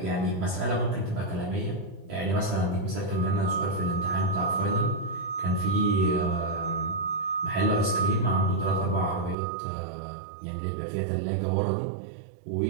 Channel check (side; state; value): left; drops out; at 9.3 s